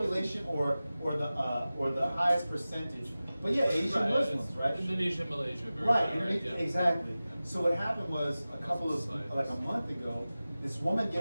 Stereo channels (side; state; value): both; inverted; correlation -0.96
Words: or the highest percentage. But yeah, Asian Right, Muslims, it's right? Indonesia, Malaysia, very Right, high, and yeah. exactly. So what happened was Societies. like a month ago, this woman